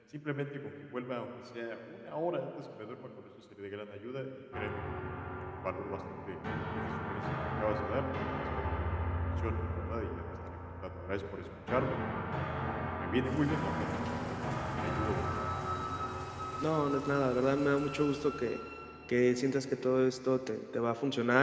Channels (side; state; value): both; identical; correlation 1.00